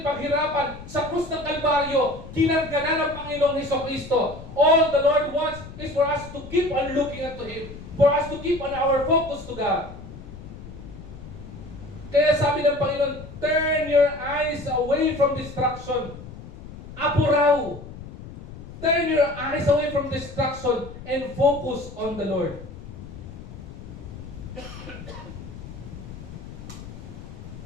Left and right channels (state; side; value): noise; left; rumble, 14 dB below the sound